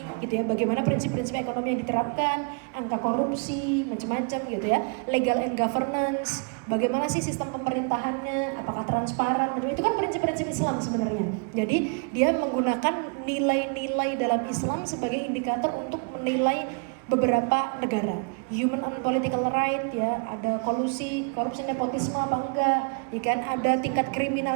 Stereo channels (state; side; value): quieter; left; 38.3 dB